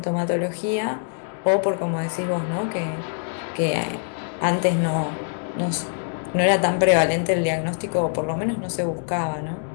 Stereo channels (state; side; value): silent; right; digital silence